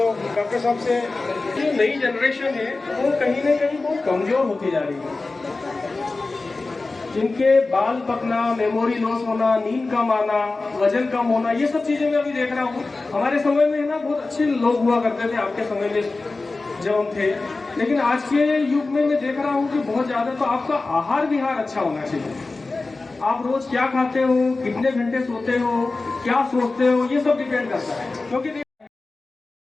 डॉक्टर साहब से, जो नई जनरेशन है वो कहीं ना कहीं बहुत कमजोर होती जा रही है। जिनके बाल पकना, मेमोरी लॉस होना, नींद कम आना, वजन कम होना, ये सब चीजें मैं अभी देख रहा हूँ। हमारे समय में ना बहुत अच्छे लोग हुआ करते थे, आपके समय में जब हम थे, लेकिन आज के युग में मैं देख रहा हूँ कि बहुत ज्यादा। तो आपका आहार विहार अच्छा होना चाहिए। आप रोज क्या खाते हो, कितने घंटे सोते हो, क्या सोचते हो, ये सब डिपेंड करता है। क्योंकि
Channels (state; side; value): quieter; right; 3.5 dB